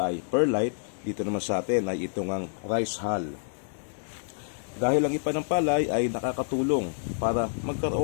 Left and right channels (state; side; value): silent; right; digital silence